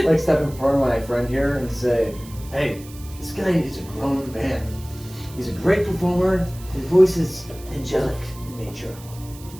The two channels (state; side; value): noise; right; hiss, 20 dB below the sound